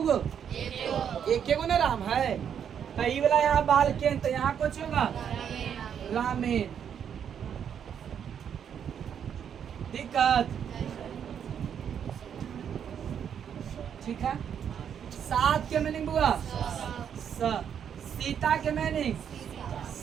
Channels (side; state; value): left; quieter; 8.3 dB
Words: एक ना राम है, तो ये वाला यहाँ बाल के, तो यहाँ कुछ होगा रामेन। दिक्कत ठीक है। सात के मीनिंग बुआ सीता के मीनिंग